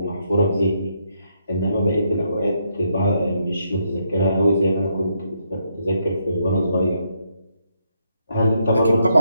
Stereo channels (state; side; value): inverted; both; correlation -0.77